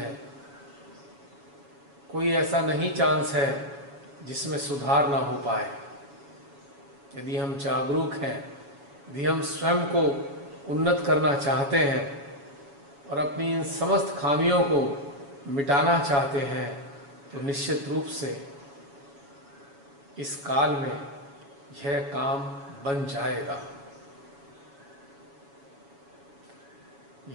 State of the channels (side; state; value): left; late; 7.1 ms